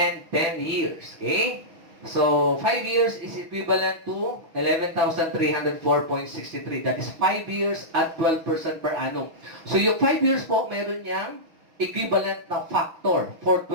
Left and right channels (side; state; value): left; late; 6.2 ms